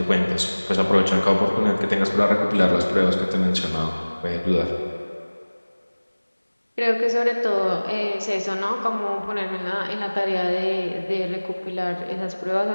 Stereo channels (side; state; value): both; inverted; correlation -1.00